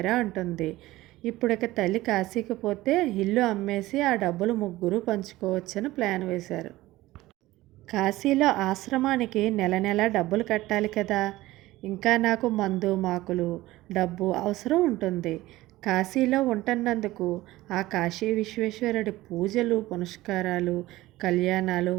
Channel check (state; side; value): quieter; left; 17.6 dB